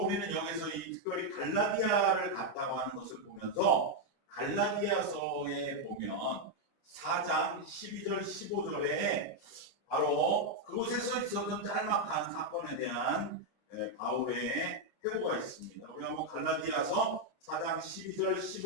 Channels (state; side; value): late; right; 29 ms